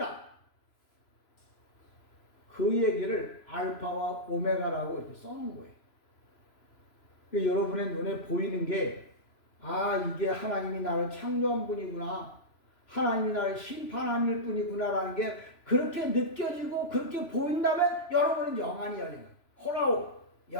그 얘기를 알파와 오메가라고 이렇게 써놓은 거예요. 그러니까 여러분의 눈에 보이는 게 이게 하나님이 나를 창조한 분이구나. 하나님이 나를 심판하는 분이구나라는 게 그렇게 느껴지고 그렇게 보인다면 여러분은 영안이 열린 거예요. 호라오,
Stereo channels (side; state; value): right; late; 3.0 ms